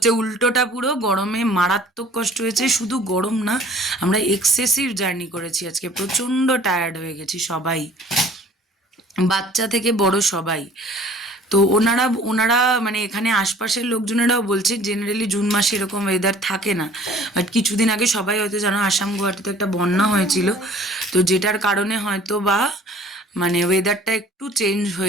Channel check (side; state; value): both; normal; correlation 0.51